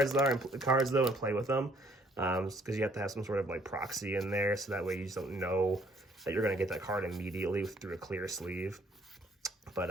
though and play with them, because you have to have some sort of like proxy in there, so that way you just don't know that you're going to get that card immediately through a clear sleeve.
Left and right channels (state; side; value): normal; both; correlation 0.62